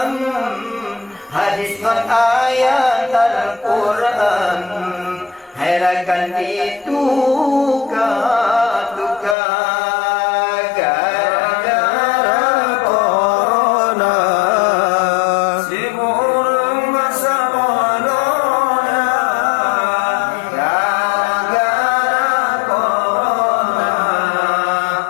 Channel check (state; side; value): drops out; right; at 9.3 s